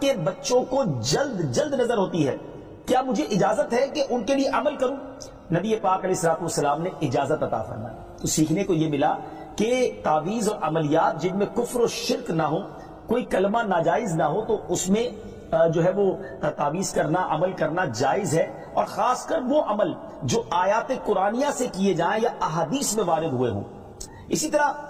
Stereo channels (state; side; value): identical; both; correlation 1.00